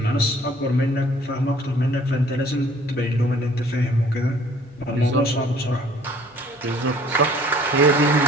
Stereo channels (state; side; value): normal; both; correlation 0.55